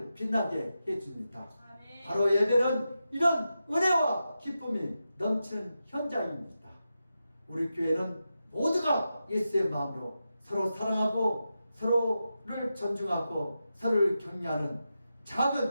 빛나게 해줍니다. 아멘. 바로 예배는 이런 은혜와 기쁨이 넘치는 현장입니다. 우리 교회는 모두가 예수의 마음으로 서로 사랑하고 서로를 존중하고 서로를 격려하는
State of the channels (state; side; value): inverted; both; correlation -0.89